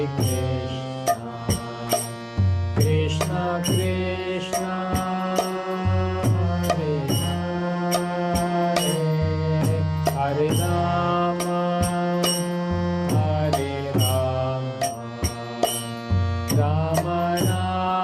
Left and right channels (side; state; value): both; identical; correlation 1.00